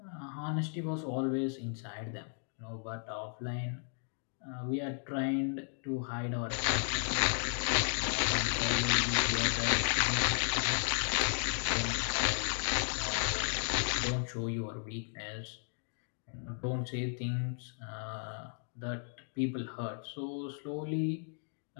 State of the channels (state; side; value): silent; right; 55 dB below the other